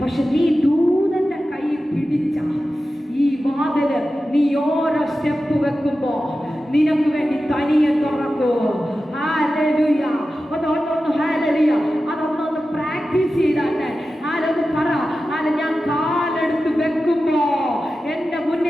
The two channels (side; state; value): both; normal; correlation 0.93